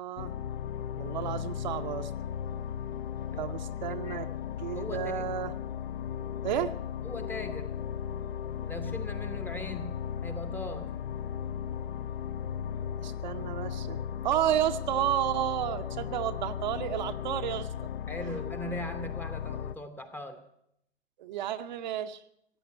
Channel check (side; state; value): both; normal; correlation -0.03